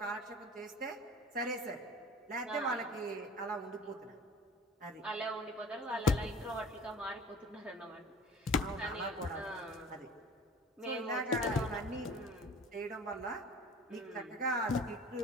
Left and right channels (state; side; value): normal; both; correlation 0.42